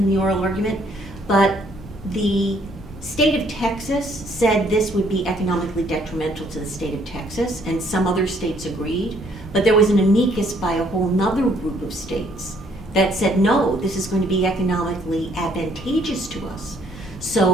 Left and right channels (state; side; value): normal; both; correlation 0.65